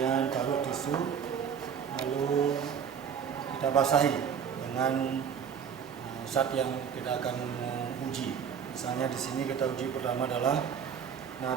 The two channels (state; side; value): quieter; left; 7.6 dB